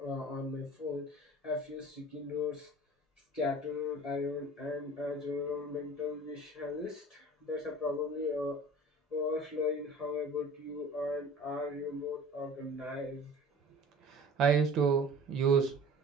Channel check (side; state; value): both; normal; correlation 0.43